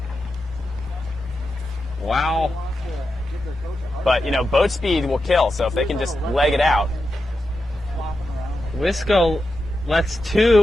Wow. But, boat speed will kill, so if they can just leg it out. Wisco lets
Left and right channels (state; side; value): normal; both; correlation 0.89